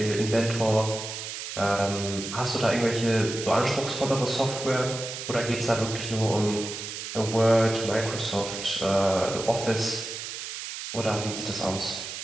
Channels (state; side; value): noise; right; hiss, 7 dB below the sound